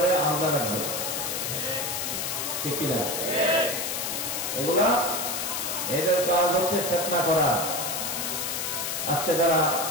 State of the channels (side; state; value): left; noise; hiss, 2 dB below the sound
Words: আলাদা রাখবে। ঠিক কিনা? এগুলা এদের কাজ হচ্ছে ফিতনা করা। আজকে যারা